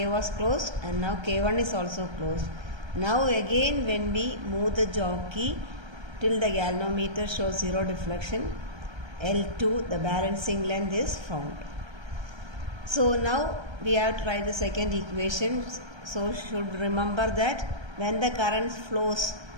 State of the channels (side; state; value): left; late; 1.3 ms